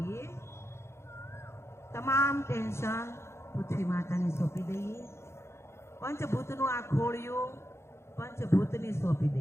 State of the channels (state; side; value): late; right; 0.13 ms